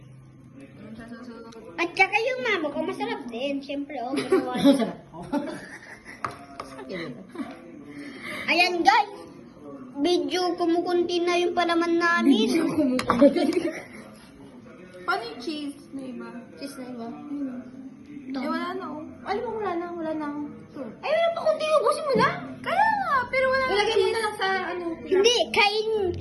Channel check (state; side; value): identical; both; correlation 1.00